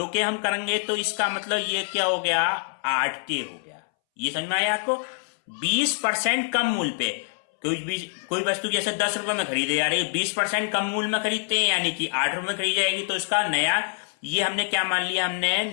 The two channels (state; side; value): silent; right; 62 dB below the other